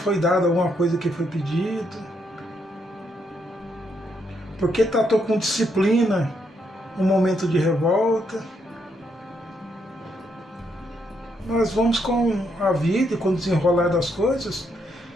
dada alguma coisa que foi pedido, por que tratou com disciplina um momento de revolta. Nós vamos com a vida e com o desenrolar das coisas,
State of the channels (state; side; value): normal; both; correlation 0.76